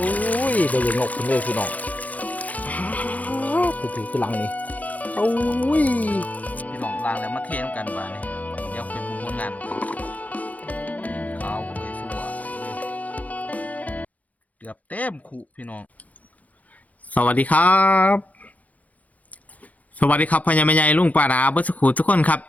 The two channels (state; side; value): late; right; 0.074 ms